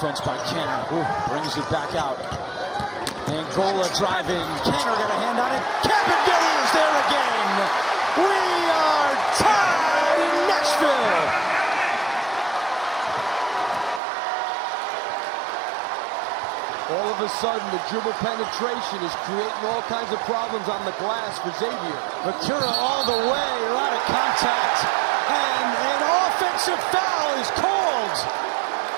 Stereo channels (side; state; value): left; drops out; at 14.0 s